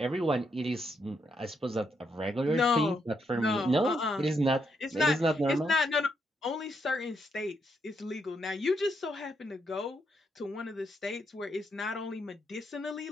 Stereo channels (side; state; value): both; normal; correlation 0.78